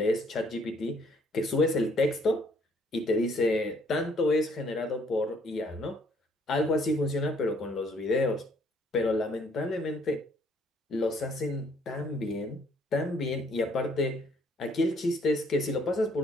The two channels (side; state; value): both; normal; correlation 0.64